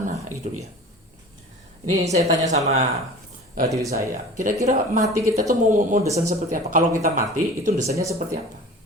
gitu ya. Ini saya tanya sama diri saya, kira-kira mati kita tuh mau desain seperti apa? Kalau kita mati itu desainnya seperti apa?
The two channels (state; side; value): normal; both; correlation 0.40